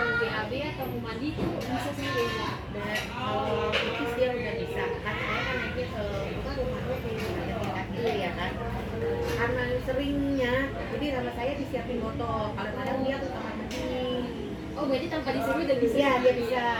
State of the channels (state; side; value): identical; both; correlation 1.00